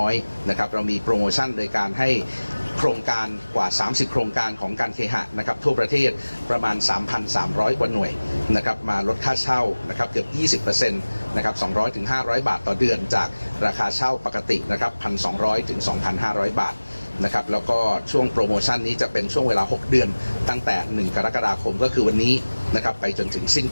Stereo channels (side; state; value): both; inverted; correlation -1.00